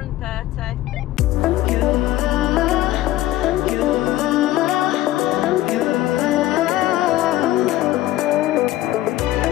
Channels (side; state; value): right; quieter; 15.2 dB